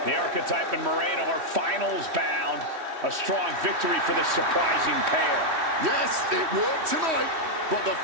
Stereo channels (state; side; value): late; left; 3.1 ms